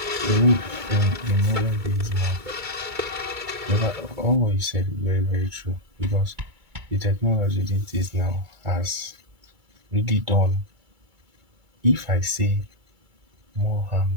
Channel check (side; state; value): left; late; 2.2 ms